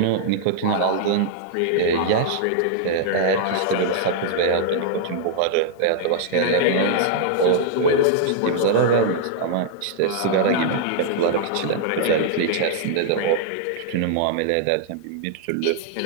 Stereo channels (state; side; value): different; both; correlation -0.01